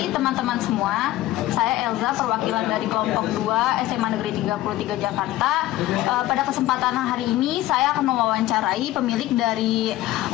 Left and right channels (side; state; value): right; quieter; 15.5 dB